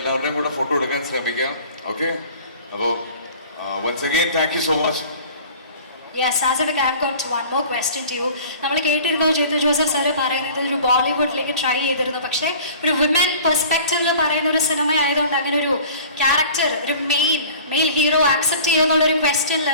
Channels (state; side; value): inverted; both; correlation -0.45